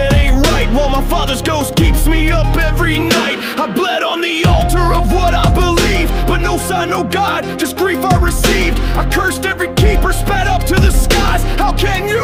ain't right, while my father's ghost keeps me up every night. I bled on the altar of what I believe, but no sign, no God, just grief I received. I cursed every keeper, spat up to the skies. How can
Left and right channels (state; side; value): identical; both; correlation 1.00